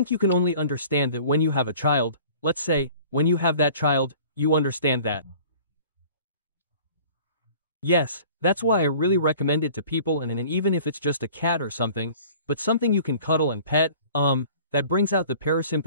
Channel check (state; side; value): inverted; both; correlation -0.47